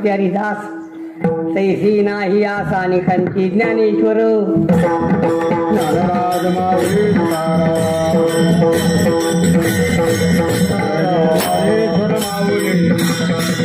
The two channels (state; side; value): identical; both; correlation 1.00